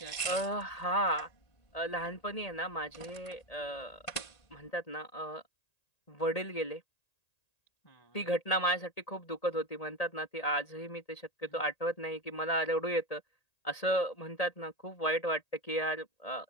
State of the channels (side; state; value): right; late; 1.9 ms